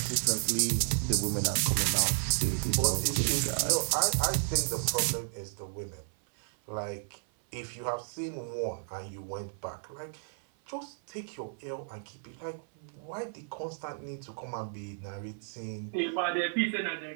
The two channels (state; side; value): silent; left; 55 dB below the other